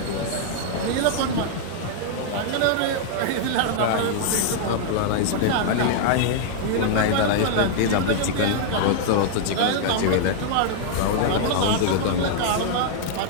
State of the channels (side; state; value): both; different; correlation -0.01